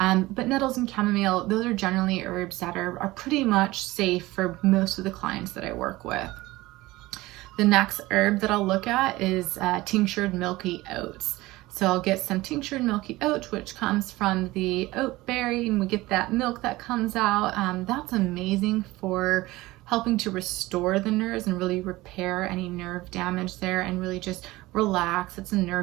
But nettles and chamomile, those are generally herbs that are pretty much safe for most of the clients that I work with. The next herb that I'll look at is tinctured milky oats. So I'll get some tinctured milky oats, which comes from the oat berry, and we get that milk that comes out. That's amazing for helping to restore the nerves and really repair any nerve damage there and really just relax. It's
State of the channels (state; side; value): quieter; left; 19.2 dB